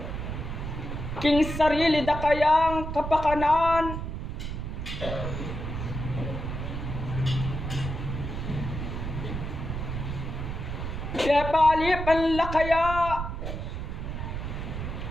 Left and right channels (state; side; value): noise; right; rumble, 5 dB below the sound